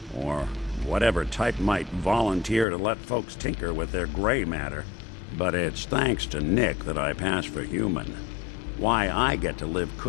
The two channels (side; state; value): right; drops out; at 2.7 s